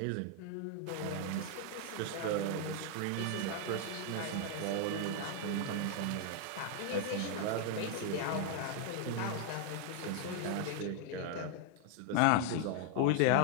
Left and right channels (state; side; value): different; both; correlation 0.00